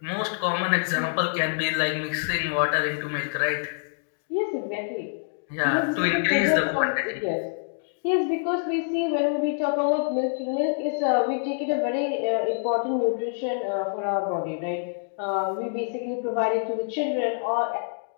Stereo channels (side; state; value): right; silent; digital silence